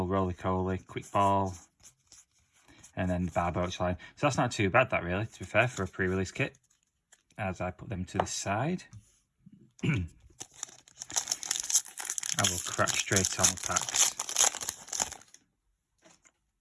Roly-Coly, Quick Ball, and then the Barboach line. So that's not too bad, that really, to be fair, for a pre-release kit. As I put them to the side. I will crack straight on the packs.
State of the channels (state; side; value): identical; both; correlation 1.00